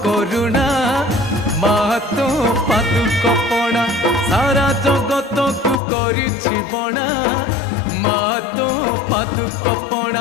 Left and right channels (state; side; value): drops out; right; at 5.8 s